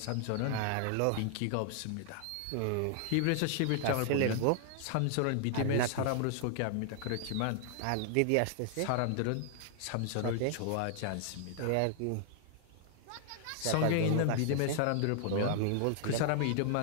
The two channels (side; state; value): both; different; correlation 0.00